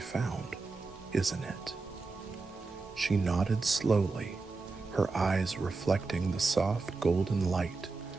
isn't it?" She nodded slowly, her eyes reflecting the soft golden light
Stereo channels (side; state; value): left; quieter; 3.9 dB